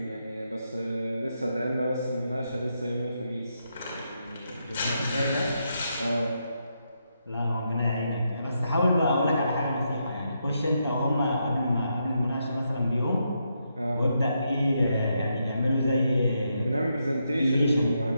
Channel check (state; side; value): inverted; both; correlation -0.81